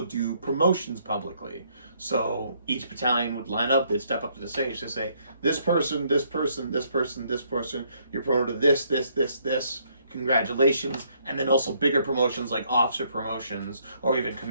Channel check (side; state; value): both; inverted; correlation -0.69